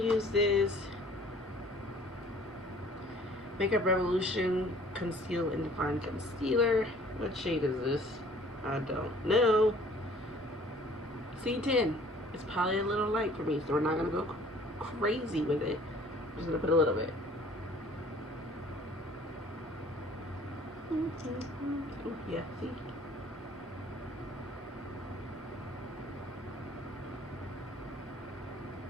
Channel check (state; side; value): normal; both; correlation 0.53